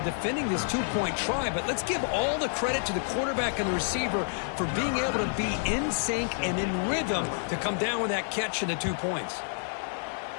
defending this 2-point try, but let's give all the credit to the quarterback and the receiver for being able to be in sync and in rhythm to come down with that catch and the 2 points.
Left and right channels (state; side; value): silent; right; 59 dB below the other